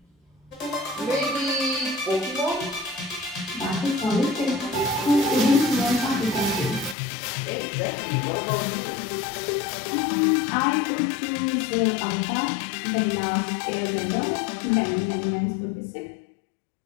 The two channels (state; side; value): drops out; right; at 7.0 s